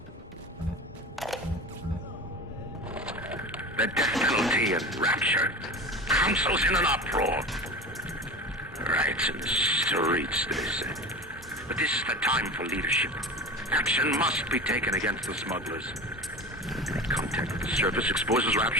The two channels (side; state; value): both; normal; correlation 0.31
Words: The death penalty and rapture. Council's in an uproar. Riots in the streets, they say. But this is the time for leadership. Action must be taken against the smugglers. Contact with the surface exposes